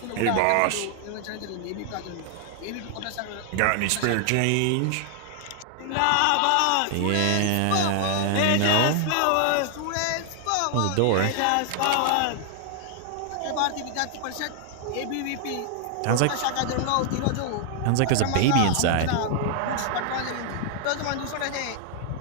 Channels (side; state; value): both; different; correlation 0.00